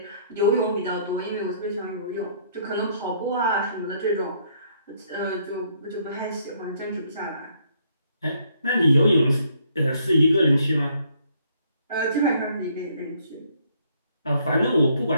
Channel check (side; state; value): both; inverted; correlation -0.67